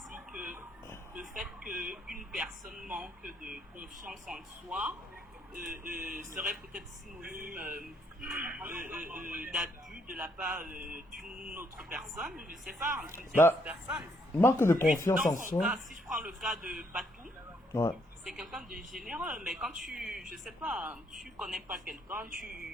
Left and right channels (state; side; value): normal; both; correlation 0.72